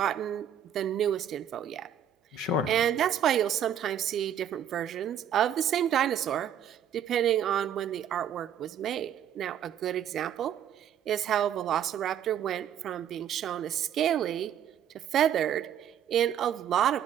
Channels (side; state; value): left; quieter; 9.2 dB